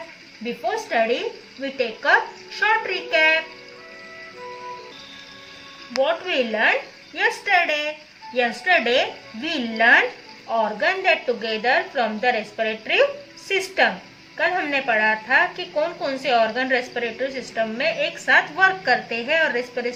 Before study, we take a short recap. What we learned yesterday? Yesterday we learned organ that together from the respiratory system. कल हमने पढ़ा था कि कौन कौन से organ respiratory system में एक साथ वर्क करते हैं और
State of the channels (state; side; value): identical; both; correlation 1.00